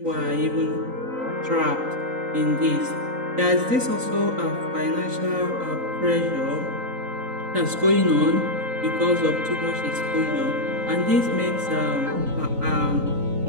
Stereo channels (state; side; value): late; left; 3.9 ms